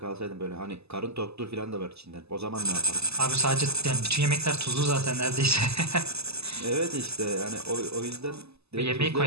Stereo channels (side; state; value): left; late; 0.79 ms